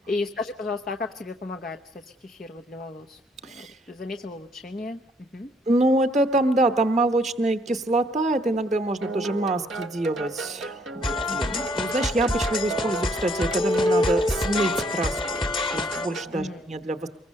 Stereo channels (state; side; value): normal; both; correlation 0.67